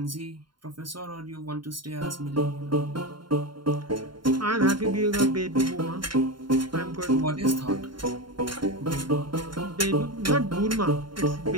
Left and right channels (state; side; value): late; left; 0.72 ms